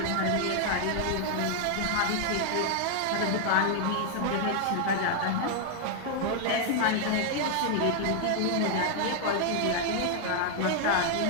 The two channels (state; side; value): different; both; correlation 0.00